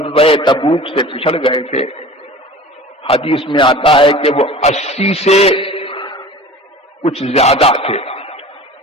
تبوک سے پچھڑ گئے تھے حدیث میں آتا ہے کہ وہ 80 سے کچھ زیادہ تھے،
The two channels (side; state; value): both; normal; correlation 0.40